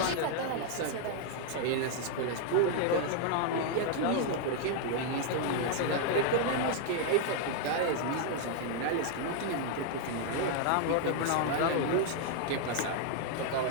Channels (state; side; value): different; both; correlation 0.00